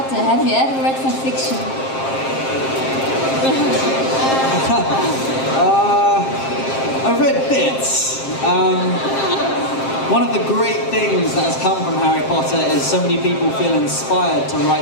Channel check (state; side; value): late; right; 7.5 ms